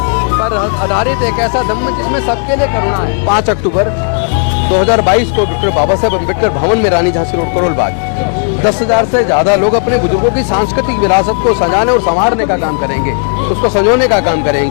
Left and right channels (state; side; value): silent; right; 55 dB below the other